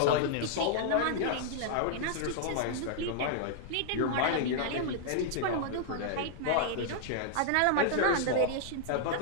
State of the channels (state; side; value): different; both; correlation -0.01